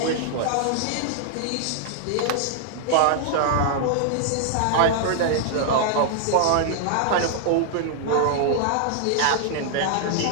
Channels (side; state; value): both; different; correlation -0.01